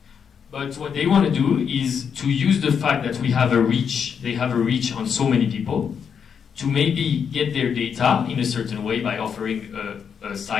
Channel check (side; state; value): right; quieter; 7.1 dB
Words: But what they want to do is to use the fact that we have a reach, they have a reach on so many people, to maybe get their data in a certain way by offering a